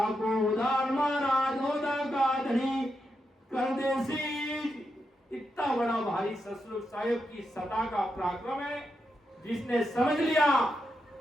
उदार महाराज ओदा का धनी कर देसी। इतना बड़ा भारी सतरूप साहेब की सता का पराक्रम है। जिसने समझ लिया,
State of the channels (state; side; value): normal; both; correlation 0.85